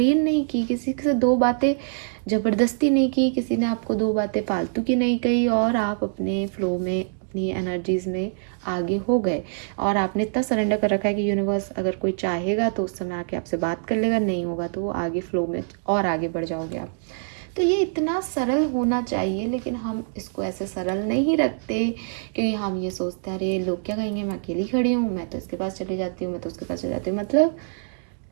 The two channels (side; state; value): left; silent; digital silence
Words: नहीं की, किसी से दो बातें ज़बरदस्ती नहीं की, किसी ने आपको दो बातें फालतू की नहीं कही, और आप अपने फ्लो में अपनी एनर्जीज में आगे हो गए। और आपने इतना सरेंडर कर रखा है कि यूनिवर्स अगर कोई चाहेगा तो उस समय आके आपसे बात कर लेगा, नहीं होगा तो वो आगे फ्लो में और आगे बढ़ जाओगे आप। तो ये इतना सरल होना चाहिए, लेकिन हम इसको ऐसे सरल नहीं रखते, क्योंकि हम ये सोचते हैं अरे लोग क्या कहेंगे, मैं अकेली खड़ी हूँ, मैं तो इसके पास चली जाती हूँ, मैं तो उसके पास चली जाती हूँ। मतलब